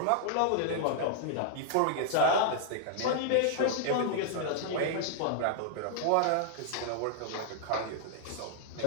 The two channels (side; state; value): both; different; correlation 0.00